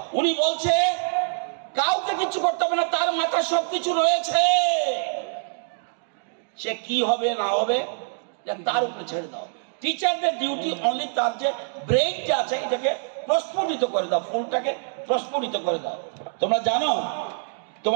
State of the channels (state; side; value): silent; left; digital silence